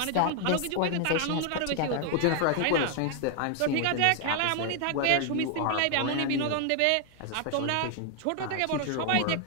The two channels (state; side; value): different; both; correlation 0.00